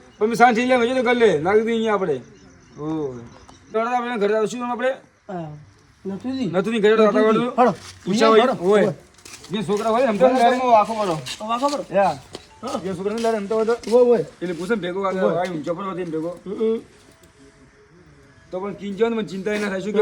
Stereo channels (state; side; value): identical; both; correlation 1.00